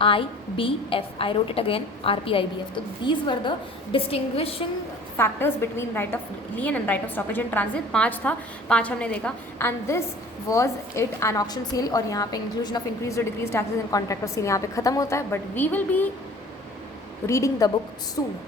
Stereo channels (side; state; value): both; normal; correlation 0.47